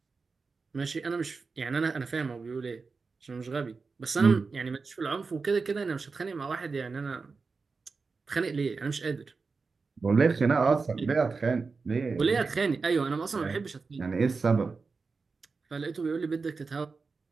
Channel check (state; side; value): quieter; left; 4.5 dB